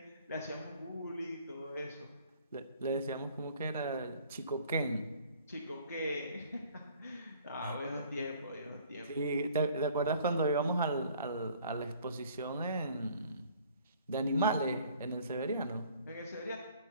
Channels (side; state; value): both; inverted; correlation -0.56